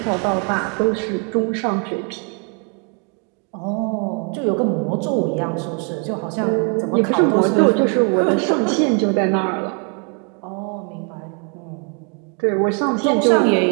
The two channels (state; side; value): quieter; left; 37.9 dB